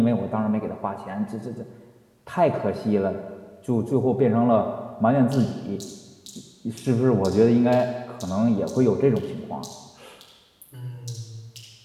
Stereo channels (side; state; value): both; identical; correlation 1.00